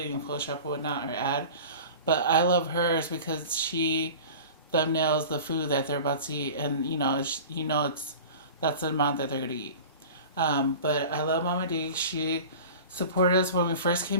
in Photoshop or whatnot or add, but I love hers because she thumbnails the food that they're about to eat, and that's the amount that they're gonna eat. But I love Mama D. She supported us when we first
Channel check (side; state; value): both; inverted; correlation -0.38